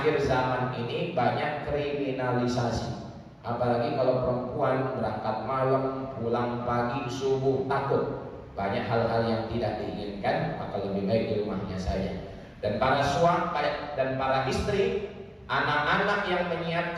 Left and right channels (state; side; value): identical; both; correlation 1.00